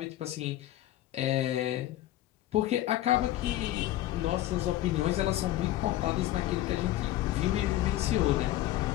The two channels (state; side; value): quieter; right; 14.4 dB